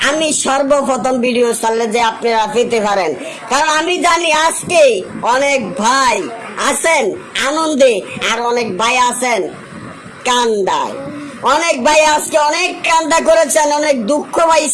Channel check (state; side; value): identical; both; correlation 1.00